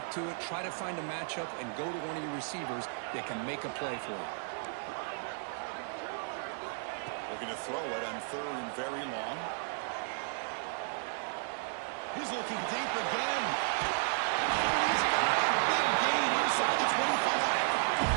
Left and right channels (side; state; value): left; silent; 55 dB below the other